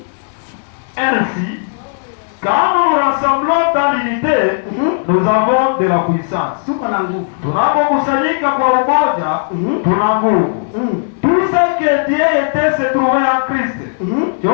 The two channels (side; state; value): right; silent; digital silence